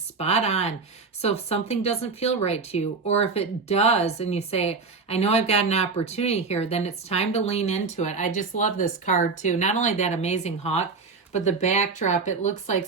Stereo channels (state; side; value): quieter; left; 4.5 dB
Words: on. So if something doesn't feel right to you, or if it does, and you say, I know I've got an opportunity here, then it's time to lean into it. I just love this card too. Not only that amazing hawk, but the backdrop, it looks like